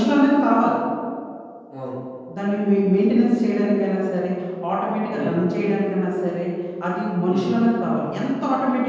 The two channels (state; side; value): identical; both; correlation 1.00